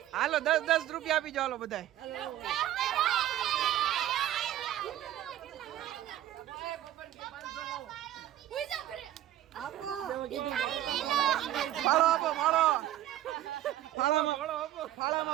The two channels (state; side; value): quieter; left; 13.1 dB